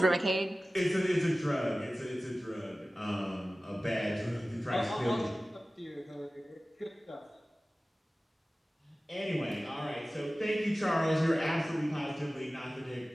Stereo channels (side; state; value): both; normal; correlation 0.97